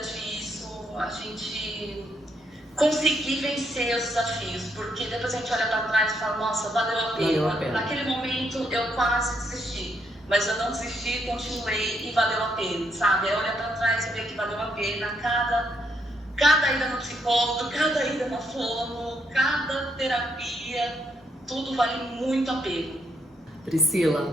isso, a gente conseguir vencer os desafios, porque depois a gente olha para trás e fala, nossa, valeu a pena. Naquele momento eu quase desisti, mas eu não desisti, continuei e valeu a pena, sabe? É olhar para trás e ver que valeu a pena cada ida no psicólogo, cada ida na fono, cada terapia, tudo vale muito a pena.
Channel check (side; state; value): both; normal; correlation 0.75